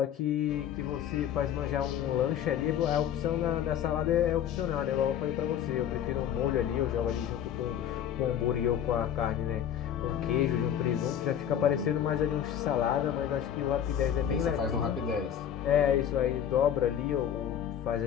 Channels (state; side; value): quieter; right; 9.6 dB